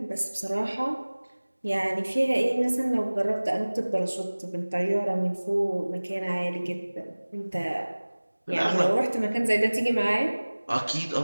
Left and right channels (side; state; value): both; inverted; correlation -1.00